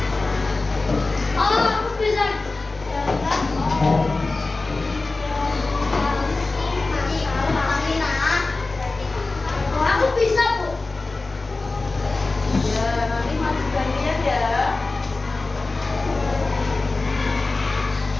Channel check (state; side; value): quieter; right; 3.4 dB